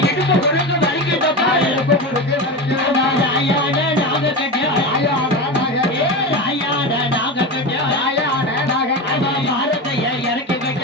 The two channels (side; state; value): both; normal; correlation 0.22